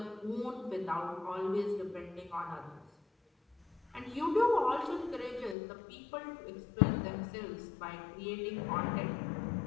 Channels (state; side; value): drops out; right; at 5.6 s